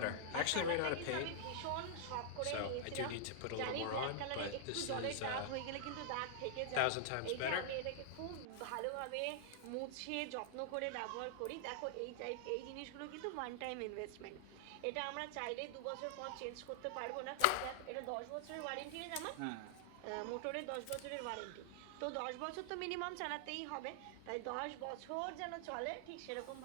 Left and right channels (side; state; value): both; different; correlation -0.01